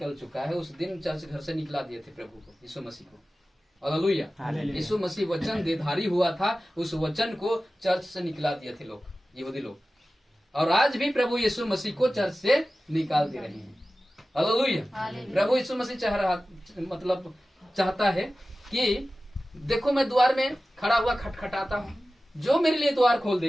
चुका है। उस दिन चर्च घर से निकला दिए थे प्रभु को, यीशु मसीह को। हालेलुया। यीशु मसीह वचन देधारी हुआ था, उस वचन को चर्च से निकला दिए थे लोग, यहूदी लोग। और आज भी प्रभु यीशु मसीह को चर्च से निकाल दे रहे हैं। हालेलुया। प्रभु यीशु मसीह चाहता है कि देखो, मैं द्वार में खड़ा हुआ खटखटाता हूँ, जो मेरे लिए द्वार खोल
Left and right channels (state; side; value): normal; both; correlation 0.95